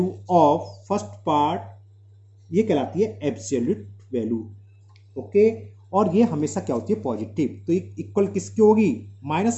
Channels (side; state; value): both; identical; correlation 1.00